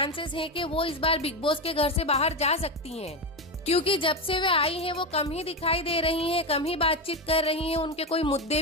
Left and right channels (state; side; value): normal; both; correlation 0.14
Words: हैं कि वो इस बार बिग बॉस के घर से बाहर जा सकती हैं, क्योंकि जब से वे आई हैं वो कम ही दिखाई दे रही हैं, कम ही बातचीत कर रही हैं, उनके कोई